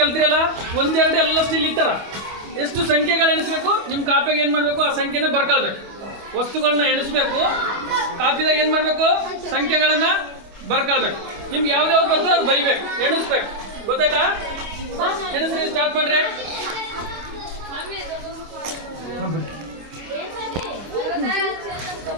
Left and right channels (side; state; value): left; late; 25 ms